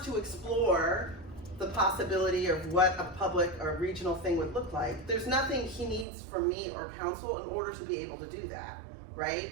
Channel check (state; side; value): drops out; left; at 6.1 s